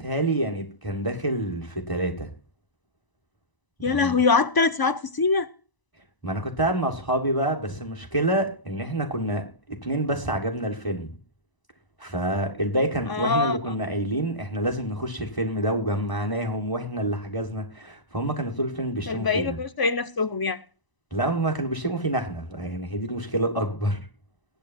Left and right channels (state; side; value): late; right; 1.0 ms